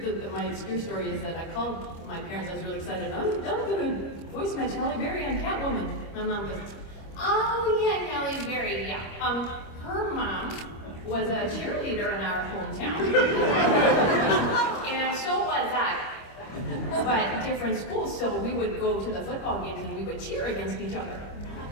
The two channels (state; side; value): late; right; 25 ms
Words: My obscure story is that I called my parents. I was really excited. I'm going to voice match Halle Berry on Catwoman. My mom goes, "Oh yeah, Halle Berry. Yeah. Her mom was a cheerleader in our hometown, and so was I. But different schools, so we would go to the football games and we would cheer against each other."